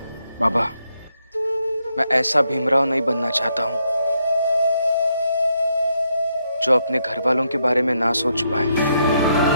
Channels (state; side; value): inverted; both; correlation -0.78